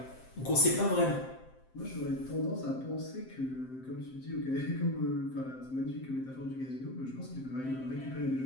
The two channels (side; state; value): right; late; 7.7 ms